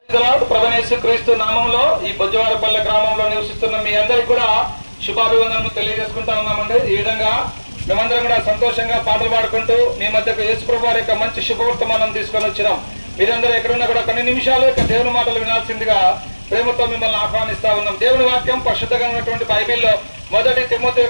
ప్రభువైన క్రీస్తు నామంలో ఈ బొజ్జవారపల్లె గ్రామంలో నివసిస్తున్న మీ అందరికి కూడా శుభాభివందనలు తెలియజేసుకుంటా ఉన్నామండి. ఈ విధంగా మేమందరం కూడా సంతోషంగా పాటలు పాడుకుంటూ మీ మధ్యకు యేసుప్రభు వారి యొక్క మంచి శుభవర్తమానం తీసుకొని వచ్చినాం. మీరందరూ ఎక్కడున్నా కూడా కొన్ని నిమిషాలు దేవుని మాటలు వినాల్సిందిగా ప్రేమతో మిమ్మల్ని ఆహ్వానిస్తా ఉన్నాం. దేవుని వాక్యం పరిశుద్ధంగా ఉన్నటువంటి బైబిల్లో 1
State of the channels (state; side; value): inverted; both; correlation -1.00